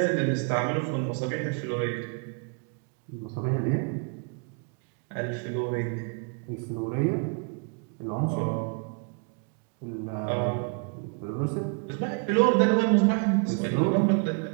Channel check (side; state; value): left; quieter; 37.1 dB